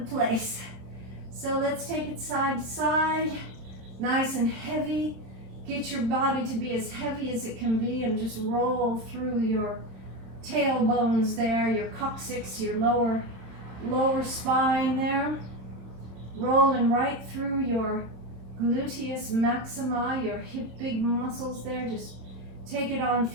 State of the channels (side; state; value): left; late; 27 ms